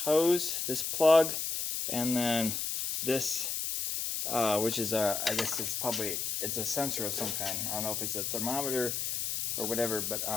hose, this plug, and then this, which is I guess it's a sensor of some kind. I don't know if it's a thermometer or whatever, but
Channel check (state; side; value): noise; left; hiss, 1 dB below the sound